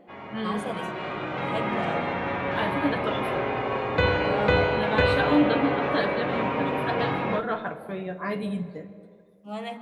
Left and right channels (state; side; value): identical; both; correlation 1.00